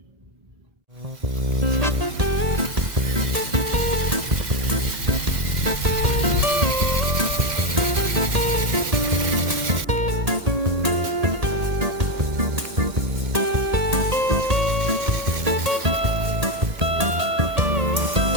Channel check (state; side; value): late; left; 1.8 ms